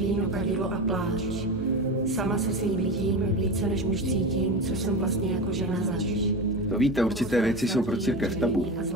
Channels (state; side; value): normal; both; correlation 0.24